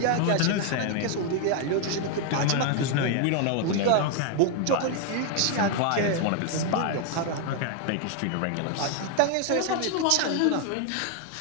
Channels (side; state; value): both; different; correlation 0.00